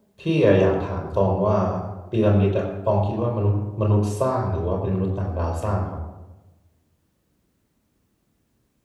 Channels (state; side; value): identical; both; correlation 1.00